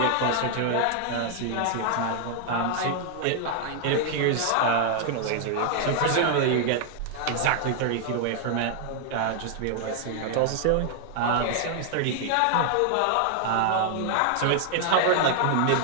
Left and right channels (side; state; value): both; different; correlation 0.00